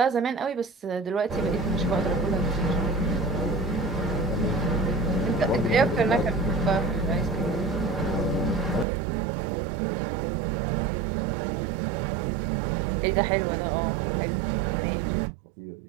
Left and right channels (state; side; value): drops out; left; at 8.8 s